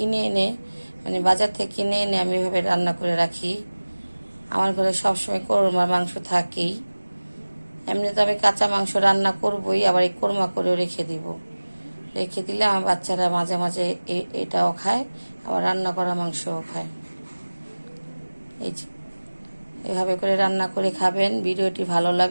এনে, মানে বাজার থেকে কিনে এনে আমি এভাবে রান্না করে রাখি। আমার ঘরে সবসময় কোরমার মাংস থাকেই। এমনিতে আমি কাঁচা মাংস রান্না করবই, আবার এই কোরমা করেও রেখে দিব। রেখে দিলে আমার বাচ্চারা মাঝে মাঝে এটাও খায়, আবার রান্না করা মাংসও খায়। এই এভাবে করে রান্না করে খাবেন। ভিডিওটি ভালো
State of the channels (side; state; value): both; inverted; correlation -1.00